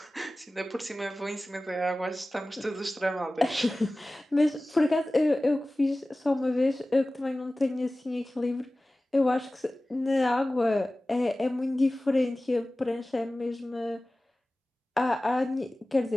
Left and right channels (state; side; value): normal; both; correlation 0.97